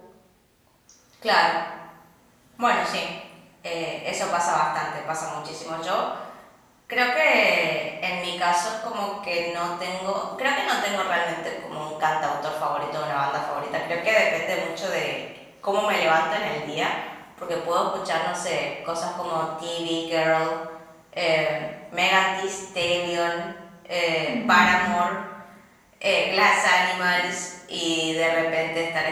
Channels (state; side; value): identical; both; correlation 1.00